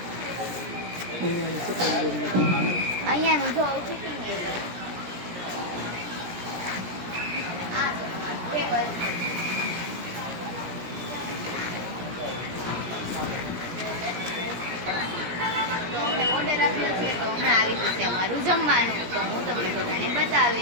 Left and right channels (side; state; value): left; late; 17 ms